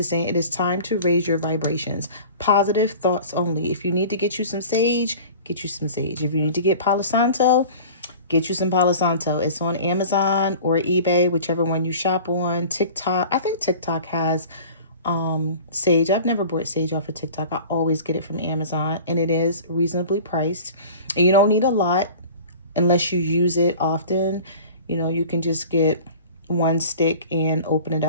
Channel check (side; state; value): both; inverted; correlation -0.41